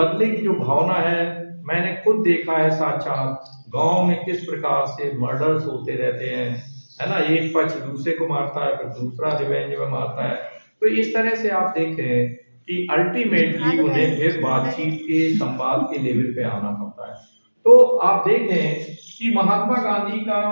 की जो भावना है, मैंने खुद देखा है साक्षात गांव में किस प्रकार से मर्डर्स होते रहते हैं, है ना। एक पक्ष दूसरे को मारता है, फिर दूसरा रिवेंज में मारता है। तो इस तरह से आप देखें कि अल्टीमेटली उन्हें फिर बातचीत के, संवाद के लेवल पे आना पड़ता है। तो आप देखें कि महात्मा गांधी का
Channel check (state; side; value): inverted; both; correlation -1.00